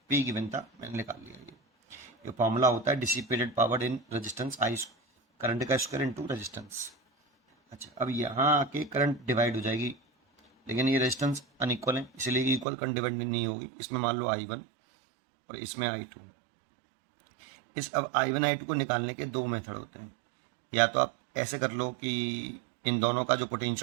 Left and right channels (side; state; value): left; drops out; at 12.7 s